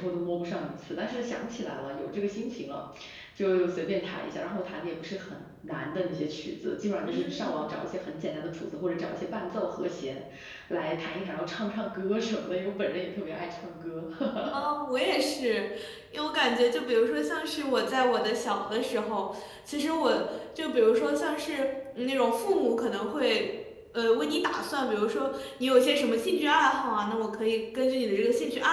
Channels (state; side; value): identical; both; correlation 1.00